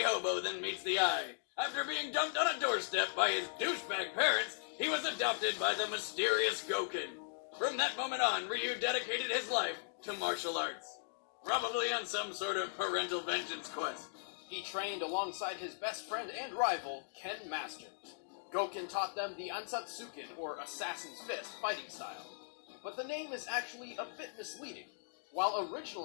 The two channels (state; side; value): silent; right; digital silence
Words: hobo than meets the eye. After being dumped on a doorstep by his douchebag parents, he was adopted by the mysterious Goken. From that moment on, Ryu dedicated his life to martial arts. Probably on some sort of parental vengeance quest. He trained alongside his best friend and rival, Ken Masters. Goken taught them the Ansatsuken, or Assassin's Fist, fighting style. But the name is actually a bit misleading. While